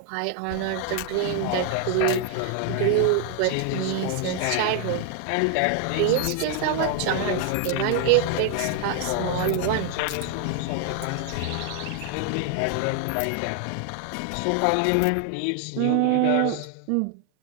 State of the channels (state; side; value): different; both; correlation 0.00